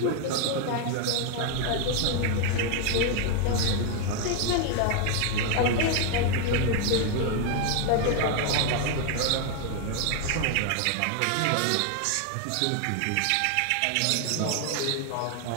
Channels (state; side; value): different; both; correlation 0.00